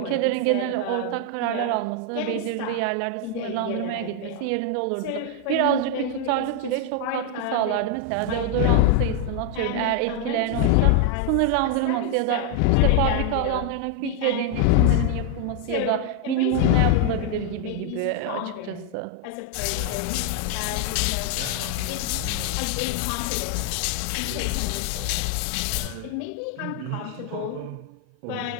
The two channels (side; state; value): both; different; correlation 0.00